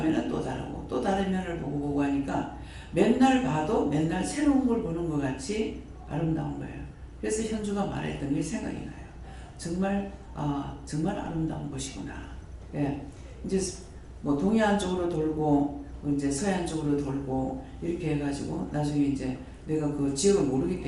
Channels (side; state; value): both; identical; correlation 1.00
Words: 또 다르고 또 다른 면을 보고 하니까 맨날 봐도 맨날 새로운 걸 보는 것 같이 아름다운 거예요. 그래서 현주가 말했던 게 생각이 나요. 정말 아름다운 곳이구나. 예, 이제 뭐 동해안 쪽으로 돌고 이제 서해안 쪽으로 돌고 이렇게 해가지고 나중에 이제 내가 그 지역을 모르기